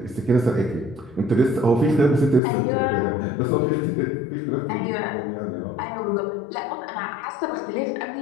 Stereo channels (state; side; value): drops out; right; at 2.4 s